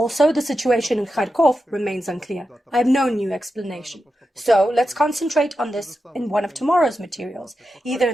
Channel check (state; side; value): normal; both; correlation 0.89